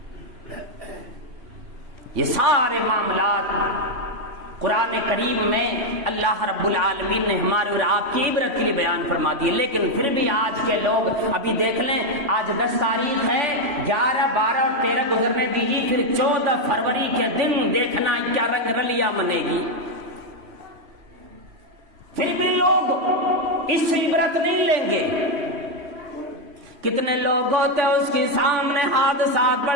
یہ سارے معاملات قرآن کریم میں اللہ رب العالمین نے ہمارے اور آپ کی عبرت کے لیے بیان فرما دی، لیکن پھر بھی آج کے لوگ، ابھی دیکھ لیں آج 10 تاریخ ہے، 11، 12 اور 13 گزرنے دیجیے، پھر 14 فروری کے دن دیکھنا کیا رنگ رلیاں بنے گی، پھر بھی لوگ اس سے عبرت نہیں لیں گے۔ کتنے لوگ ہوتے اس کے سامنے حادثات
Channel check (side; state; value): left; late; 3.5 ms